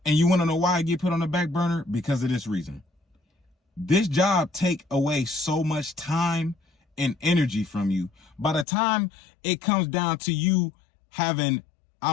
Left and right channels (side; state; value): right; drops out; at 8.7 s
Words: And you want to know why I get put on the back burner? Because of this reason. This job take away so much time and energy from you. By the time it comes down to you having, I